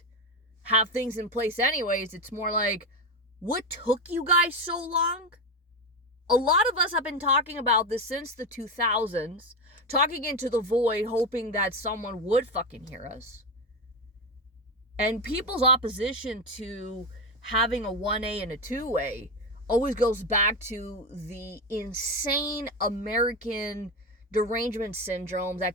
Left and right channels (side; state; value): both; normal; correlation 0.15